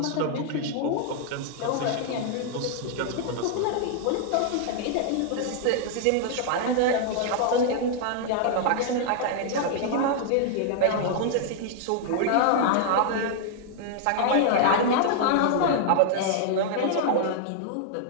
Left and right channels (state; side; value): different; both; correlation -0.01